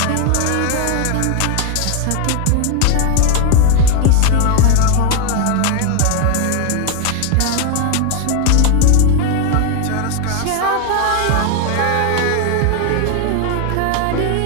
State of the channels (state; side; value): different; both; correlation 0.01